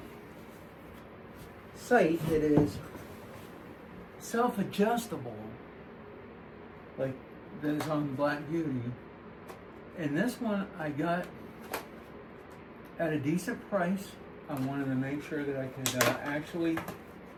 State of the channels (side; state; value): both; identical; correlation 1.00